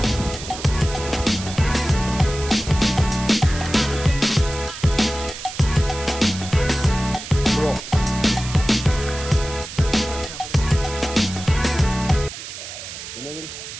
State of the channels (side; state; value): right; noise; hiss, 11 dB below the sound